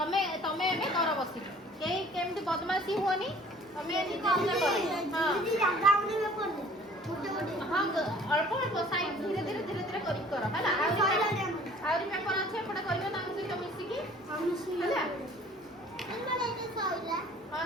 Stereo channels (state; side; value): normal; both; correlation 0.52